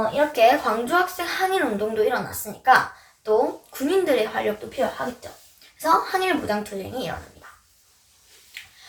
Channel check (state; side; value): identical; both; correlation 1.00